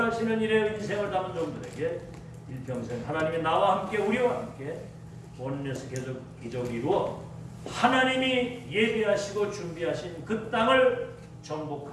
일에 인생을 담은 종들에게 일평생 하나님이 나와 함께 우리와 함께 원에서 기적을 이루어 하나님이 예비하시고 준비하신 그 땅을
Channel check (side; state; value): both; identical; correlation 1.00